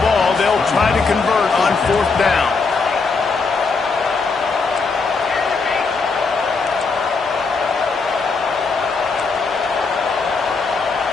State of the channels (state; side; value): quieter; right; 4.5 dB